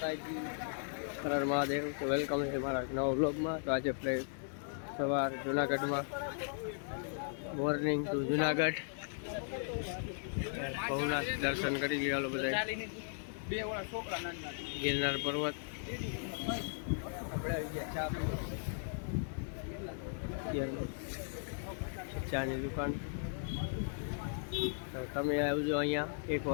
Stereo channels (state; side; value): silent; right; digital silence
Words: હર હર મહાદેવ. તો વેલકમ છે મારા નવા વ્લોગમાં. તો આજે આપણે સવાર જુનાગઢમાં, મોર્નિંગ ટુ જુનાગઢ ભવનાથ દર્શન કરી ગયા બધા. ગિરનાર પર્વત ચાની દુકાન. તો તમે આવજો અહીંયા,